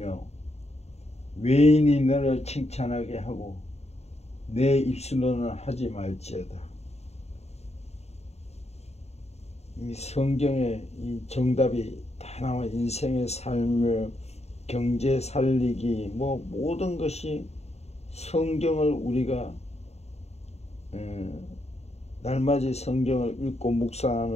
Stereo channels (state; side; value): late; right; 0.31 ms